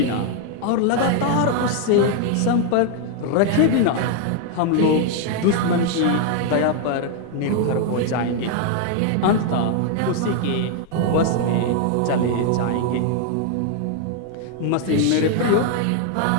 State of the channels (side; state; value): both; different; correlation 0.00